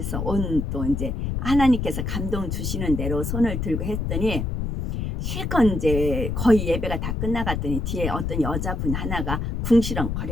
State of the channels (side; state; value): left; noise; rumble, 2 dB below the sound